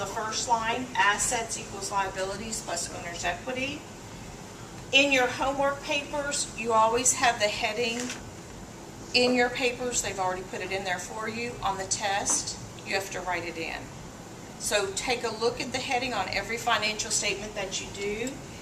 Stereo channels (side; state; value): both; identical; correlation 1.00